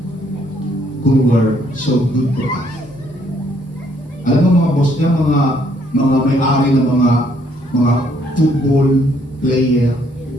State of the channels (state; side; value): normal; both; correlation 0.67